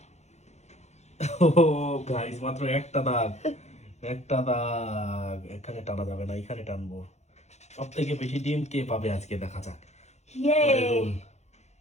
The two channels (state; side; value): late; right; 0.32 ms